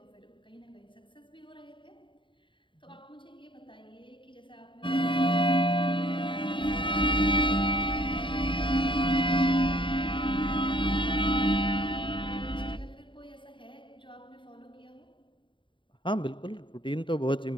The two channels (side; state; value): right; late; 0.24 ms